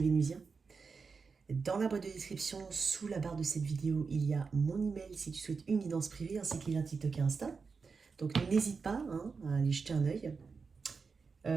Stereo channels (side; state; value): left; quieter; 5.0 dB